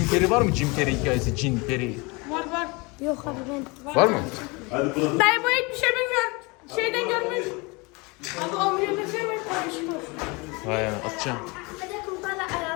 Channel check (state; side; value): quieter; right; 27.3 dB